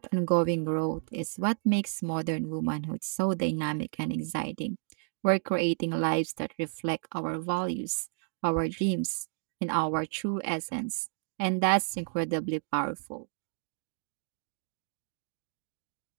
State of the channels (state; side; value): silent; left; digital silence